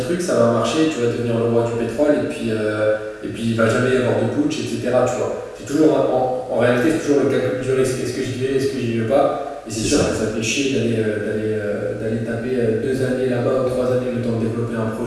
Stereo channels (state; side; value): identical; both; correlation 1.00